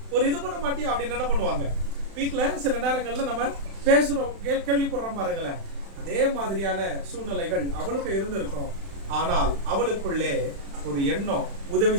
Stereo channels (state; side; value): late; left; 36 ms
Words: ஒரு இது பண்ண மாட்டியா அப்படின்னு என்ன பண்ணுவாங்க. வீட்டில் சில நேரங்களில் நம்ம பேசுகிறோம், கேள்விப்படுறோம் பாருங்களேன். அதே மாதிரியான சூழ்நிலைகள் அவளுக்கு இருந்திருக்கும். ஆனால் அவளுக்குள்ளே ஒரு எண்ணம்,